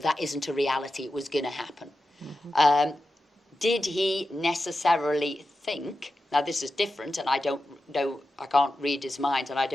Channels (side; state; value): both; normal; correlation 0.91